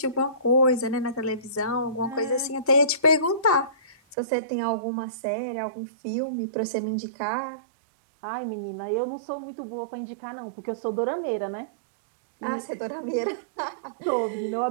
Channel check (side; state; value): left; drops out; at 4.2 s